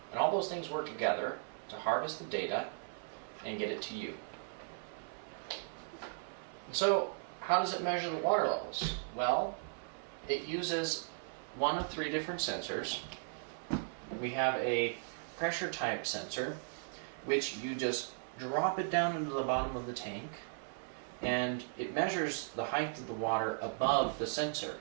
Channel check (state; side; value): silent; left; 53 dB below the other